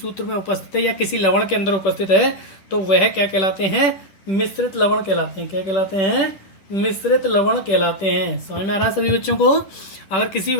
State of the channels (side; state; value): right; late; 10 ms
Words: में उपस्थित है या किसी लवण के अंदर उपस्थित है तो वह क्या कहलाते हैं? मिश्रित लवण कहलाते हैं। क्या कहलाते हैं? मिश्रित लवण कहलाते हैं। समझ में आ रहा है सभी बच्चों को? अगर किसी